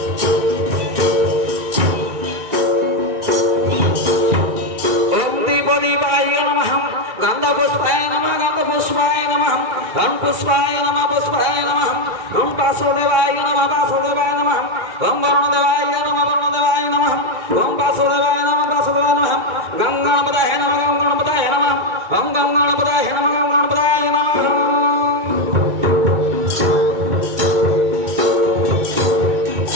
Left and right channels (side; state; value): left; late; 2.3 ms